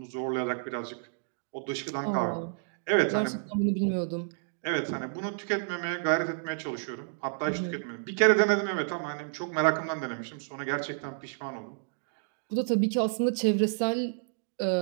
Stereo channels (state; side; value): silent; left; digital silence